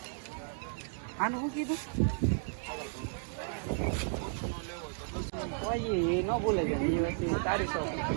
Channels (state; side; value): silent; left; digital silence